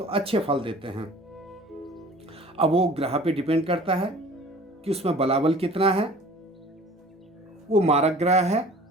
अच्छे फल देते हैं। अब वो ग्रह पे डिपेंड करता है कि उसमें बलाबल कितना है, वो मारक ग्रह है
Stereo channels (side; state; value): both; normal; correlation 0.46